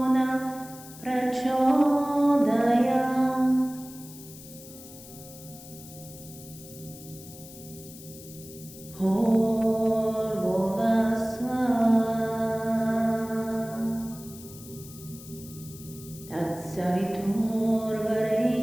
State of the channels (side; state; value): left; noise; hiss, 17 dB below the sound